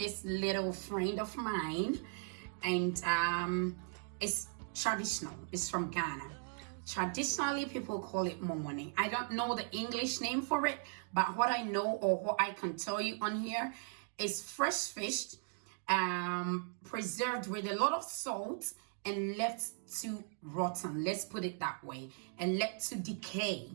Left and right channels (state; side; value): silent; left; 53 dB below the other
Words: little friend of mine, and it's traditional. It's from Ghana. Traditionally, people call it Momoni. I don't know the English name for it, but what I know or what I can tell you on here is fresh fish, preserved with a lot of salt and left to rotten, let's put it that way, and left to decay,